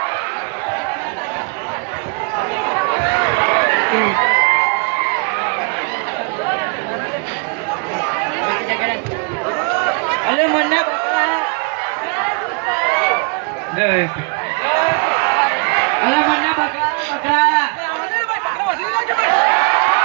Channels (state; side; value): quieter; left; 35.9 dB